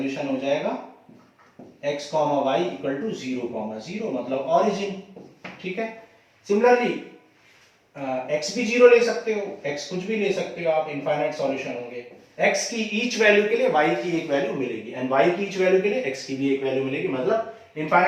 हो जाएगा x comma y equal to 0 comma 0, मतलब ऑरिजिन। ठीक है, सिमिलरली x भी 0 ले सकते हो, x कुछ भी ले सकते हो आप, इनफाइनाइट सॉल्यूशन होंगे। x की ईच वैल्यू के लिए y की एक वैल्यू मिलेगी एंड y की ईच वैल्यू के लिए x की भी एक वैल्यू मिलेगी, मतलब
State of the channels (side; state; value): both; identical; correlation 1.00